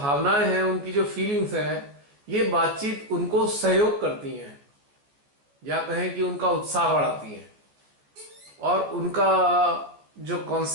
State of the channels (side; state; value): left; late; 14 ms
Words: हैं, उनकी जो फीलिंग्स हैं, ये बातचीत उनको सहयोग करती हैं, या कहें कि उनका उत्साह बढ़ाती हैं, और उनका जो